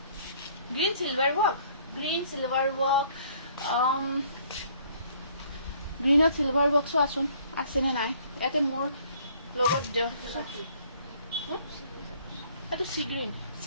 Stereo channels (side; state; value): both; inverted; correlation -0.59